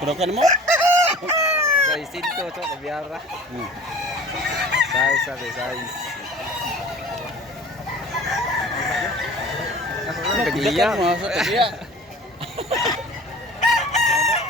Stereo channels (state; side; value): normal; both; correlation 0.43